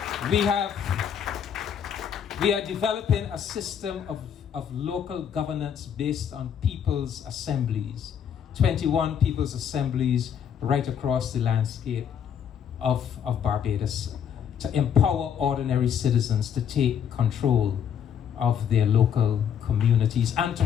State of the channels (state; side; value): quieter; right; 8.3 dB